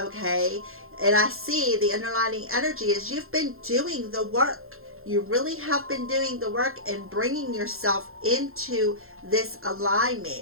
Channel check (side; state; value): left; late; 0.61 ms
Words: And I see the underlying energy is you've been doing the work. You really have been doing the work and bringing yourself into this